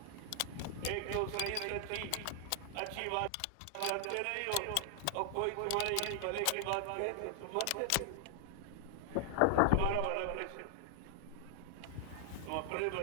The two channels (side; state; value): both; different; correlation 0.00